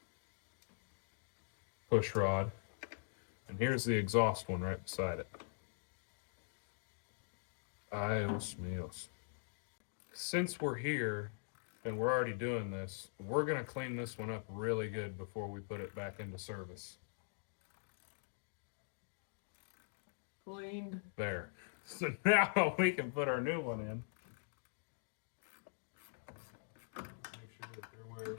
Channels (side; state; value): right; silent; digital silence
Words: push rod, And here's the exhaust one right beside it. Dios míos. Since we're here and we're already doing this, we're going to clean this one up really good before we put it back into service. Cleaned. There. So now we can put our new one in. Make sure that they're where